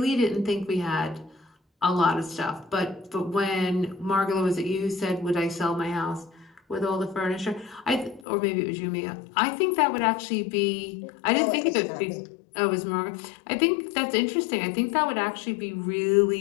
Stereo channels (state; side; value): drops out; right; at 8.2 s